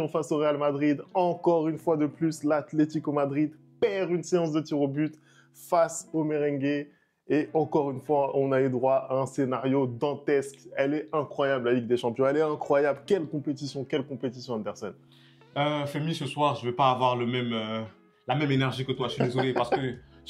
face au Real Madrid. Encore une fois de plus, l'Atlético Madrid perd une séance de tir au but face au merengue. Et encore une fois, on a eu droit à un scénario dantesque. Elle est incroyable, la Ligue des Champions. Elle est incroyable. Quelle compétition, Anderson. Femi, ce soir, je ne vais pas avoir la même énergie que toi. Je suis désolé parce que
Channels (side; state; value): both; identical; correlation 1.00